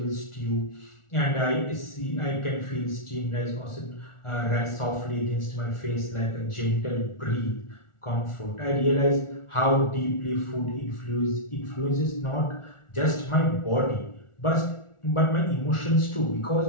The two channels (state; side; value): late; right; 1.4 ms